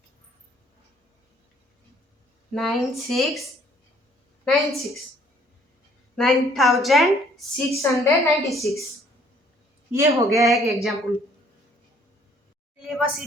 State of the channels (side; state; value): both; normal; correlation 0.61